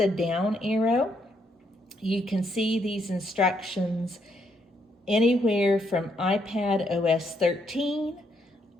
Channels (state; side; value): normal; both; correlation 0.74